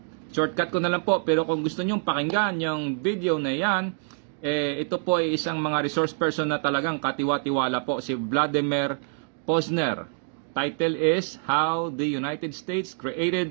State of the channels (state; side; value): silent; left; 61 dB below the other